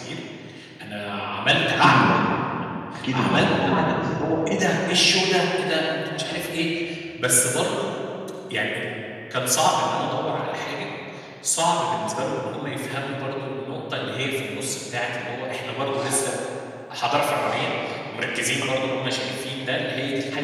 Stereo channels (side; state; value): both; identical; correlation 1.00